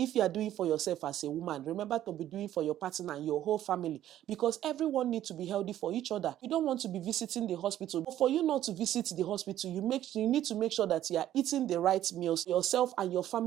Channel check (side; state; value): left; quieter; 12.4 dB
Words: you are doing for yourself as a woman, remember to be doing for your partner and your whole family, because everyone needs to be healthy for each other. You don't want to be visiting the hospital, but for you not to visit the hospital, you need to make sure that you are eating the right meals. Yourself and your